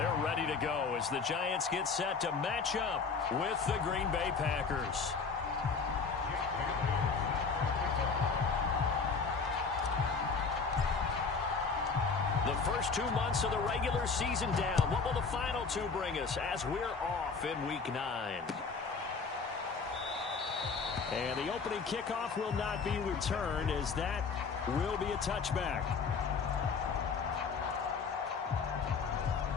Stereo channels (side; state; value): right; quieter; 5.0 dB